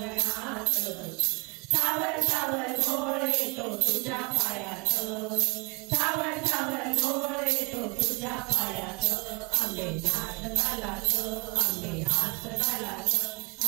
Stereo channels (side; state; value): left; quieter; 32.2 dB